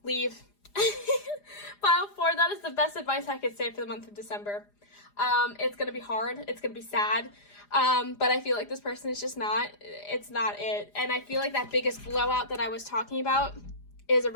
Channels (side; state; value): right; late; 4.9 ms